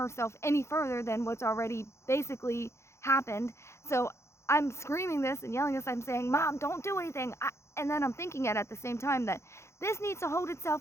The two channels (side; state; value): right; late; 0.13 ms